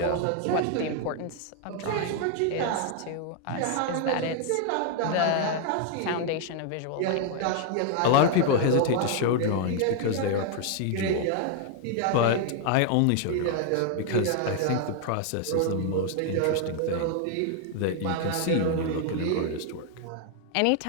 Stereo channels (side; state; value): both; different; correlation 0.00